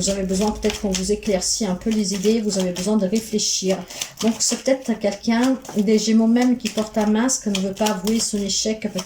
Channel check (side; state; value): both; identical; correlation 1.00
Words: avez besoin peut-être qu'on vous éclaircit un peu les idées, vous avez besoin de réfléchir. Donc c'est peut-être quelqu'un, des Gémeaux même, qui porte un masque, ne veut pas avouer son échec